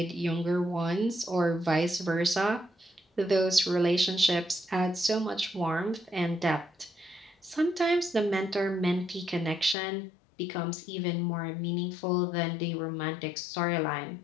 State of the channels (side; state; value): right; drops out; at 9.8 s